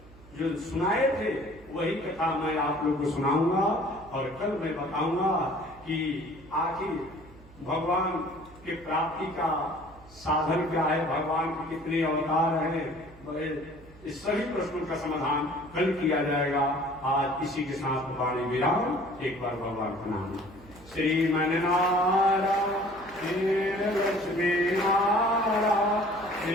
जो सुनाए थे वही कथा मैं आप लोग को सुनाऊंगा। और कल मैं बताऊंगा कि आखिर भगवान के प्राप्ति का साधन क्या है, भगवान के कितने अवतार हैं। इस सभी प्रश्नों का समाधान कल किया जाएगा। आज इसी के साथ वाणी विराम। एक बार भगवान का नाम श्रीमन्नारायण लक्ष्मी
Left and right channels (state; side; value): noise; right; hum, 23 dB below the sound